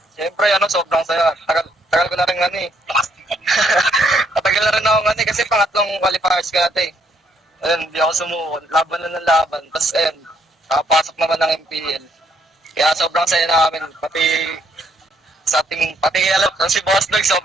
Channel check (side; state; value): both; normal; correlation 0.70